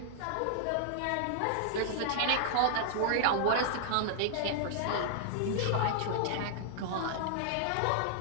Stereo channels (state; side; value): different; both; correlation -0.01